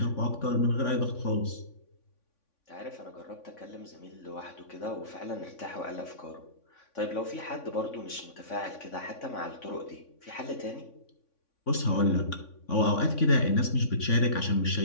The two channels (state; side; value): late; right; 3.5 ms